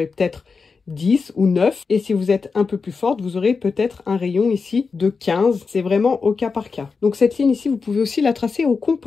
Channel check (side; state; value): right; quieter; 4.8 dB